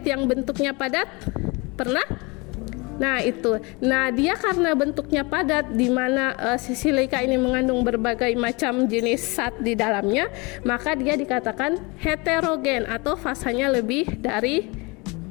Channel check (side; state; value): right; quieter; 27.2 dB